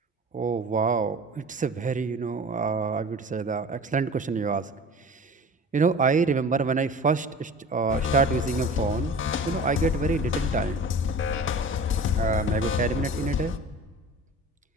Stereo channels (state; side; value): normal; both; correlation 0.39